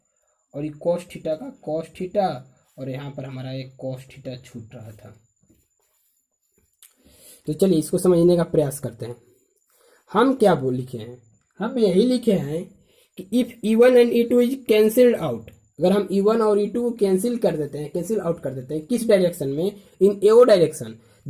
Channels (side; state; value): both; identical; correlation 1.00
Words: और ये cos थीटा का cos थीटा, और यहाँ पर हमारा एक cos थीटा छूट रहा था। तो चलिए इसको समझने का प्रयास करते हैं। हम क्या लिखे हैं, हम यही लिखे हैं कि if E1 and E2 is cancelled out, अगर हम E1 और E2 को कैंसिल आउट कर देते हैं किस डायरेक्शन में, in AO direction,